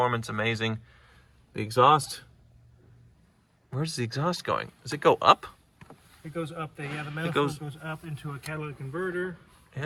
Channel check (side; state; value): both; identical; correlation 1.00